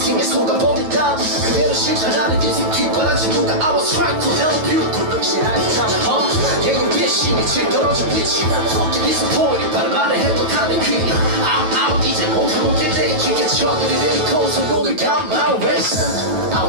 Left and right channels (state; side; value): late; left; 9.3 ms